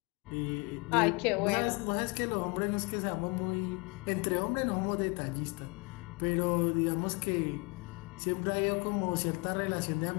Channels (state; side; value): quieter; right; 28.5 dB